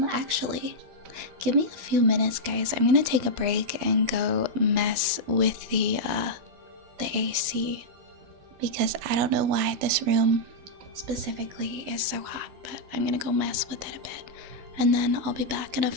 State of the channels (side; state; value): left; late; 12 ms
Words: Actually, give me a few minutes, guys. I'm gonna take a break and go mess with the AC because I don't know why this room specifically is so hot, but I'm gonna go mess with it a bit, and then I'll be back in a